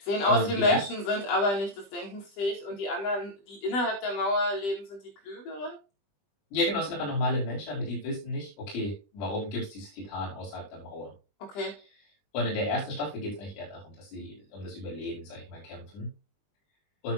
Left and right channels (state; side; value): late; right; 20 ms